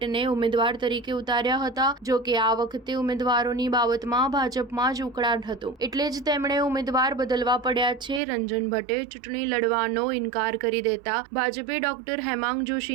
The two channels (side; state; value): left; drops out; at 8.2 s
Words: ઉમેદવાર તરીકે ઉતાર્યા હતા. જો કે આ વખતે ઉમેદવારોની બાબતમાં ભાજપમાં જ ઉકળાટ હતો, એટલે જ તેમણે ઉમેદવાર બદલવા પડ્યા છે. રંજન ભટ્ટે ચૂંટણી લડવાનો ઇનકાર કરી દેતા ભાજપે ડોક્ટર હેમાંગ